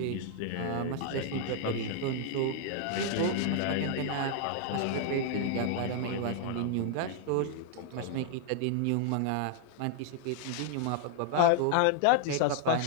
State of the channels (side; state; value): both; different; correlation 0.00